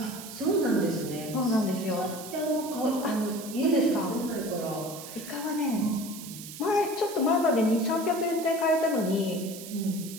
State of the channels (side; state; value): right; noise; hiss, 12 dB below the sound